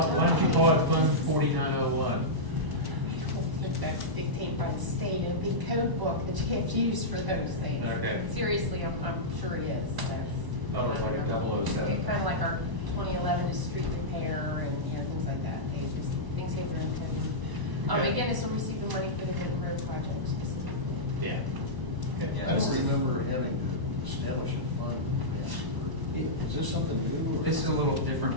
Why don't you call it Fund 4901? I don't think that's dictated by the state, a big code book that you have to use for those things. Okay. Seriously, I'm sure it is. Thought it was like a 007. Kind of like our 2011 is street repair and, things like that. Things hit their intended. Okay. Again, this will receive the money for the big road project specifically. Yeah. Okay. Yeah, I this don't is- remember having to establish a fund. Is this something new? or- This is a little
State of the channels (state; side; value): late; left; 1.0 ms